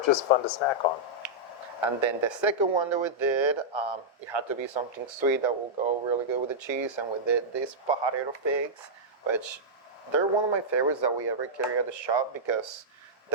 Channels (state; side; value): normal; both; correlation -0.09